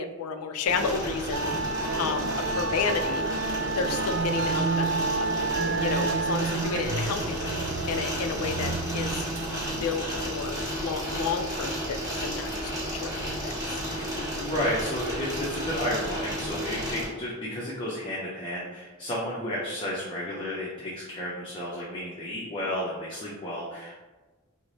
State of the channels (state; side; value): normal; both; correlation 0.04